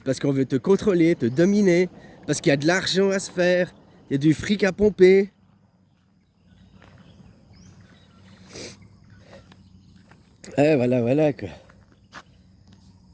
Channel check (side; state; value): both; identical; correlation 1.00